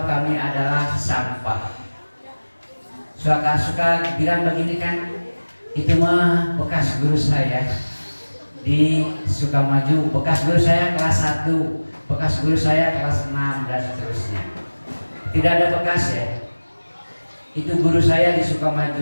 kami adalah sampah. Suka-suka bilang begini kan, itu mah bekas guru saya di Sukamaju, bekas guru saya kelas 1, bekas guru saya kelas 6 dan seterusnya. Tidak ada bekas ya. Itu guru saya di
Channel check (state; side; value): inverted; both; correlation -1.00